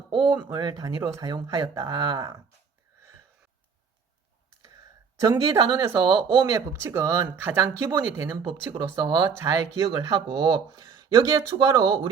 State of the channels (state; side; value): quieter; left; 6.0 dB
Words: ohm을 단위로 사용하였다. 전기 단원에서 ohm의 법칙은 가장 기본이 되는 법칙으로서 잘 기억을 하고 여기에 추가로